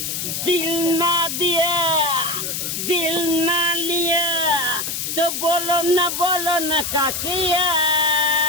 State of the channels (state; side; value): noise; left; hiss, 3 dB below the sound